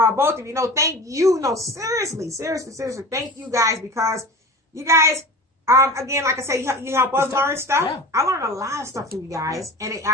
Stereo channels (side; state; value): both; normal; correlation 0.35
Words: of you. No, thank you. No, seriously. Thank you guys because you guys, again, like I say, you help us learn stuff. Yeah. I learned a lot of stuff from you guys. Yeah.